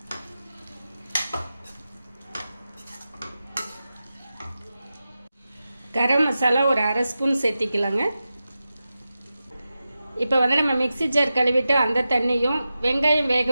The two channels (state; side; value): inverted; both; correlation -0.93